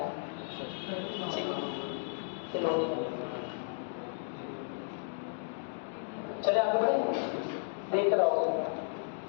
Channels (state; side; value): silent; right; digital silence